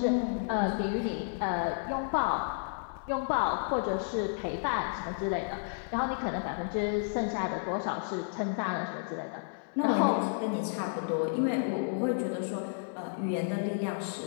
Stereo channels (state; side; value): silent; right; 56 dB below the other